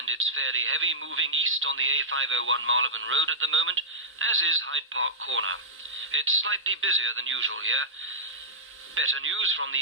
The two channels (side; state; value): both; normal; correlation -0.13